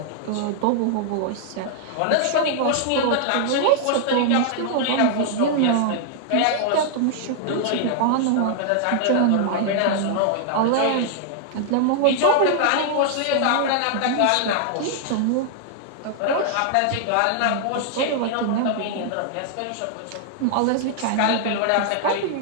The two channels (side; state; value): both; different; correlation -0.01